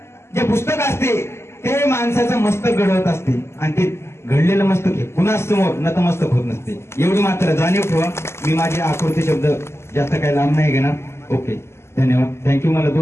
जे पुस्तक असते ते माणसाचं मस्तक घडवत असते आणि ते घडलेलं मस्तक हे कुणाच समोर नतमस्तक होत नसते. एवढी मात्र जाणीव ठेवा. मी माझे आकृती शब्द जास्त काही लांब नाही घेणार. ओके, धन्यवाद. थँक्यू. मला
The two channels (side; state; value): right; late; 0.13 ms